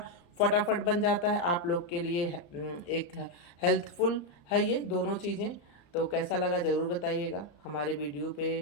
फटाफट बन जाता है आप लोग के लिए। एक हेल्थफुल है ये दोनों चीज़ें। तो कैसा लगा ज़रूर बताइएगा। हमारे वीडियो पे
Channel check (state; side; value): late; right; 35 ms